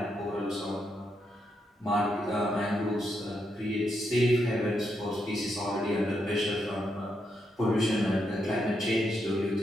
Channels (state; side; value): normal; both; correlation 0.81